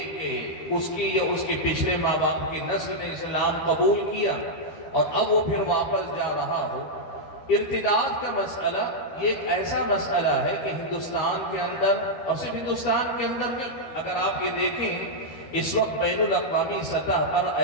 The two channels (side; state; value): right; late; 12 ms